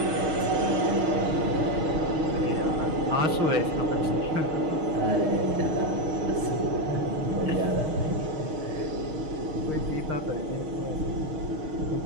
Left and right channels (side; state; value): left; late; 6.4 ms